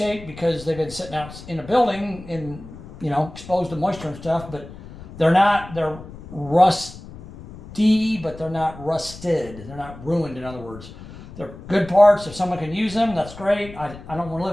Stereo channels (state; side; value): noise; left; rumble, 16 dB below the sound